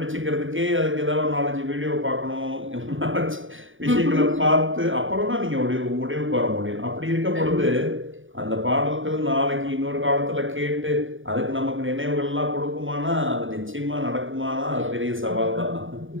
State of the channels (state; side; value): late; left; 0.57 ms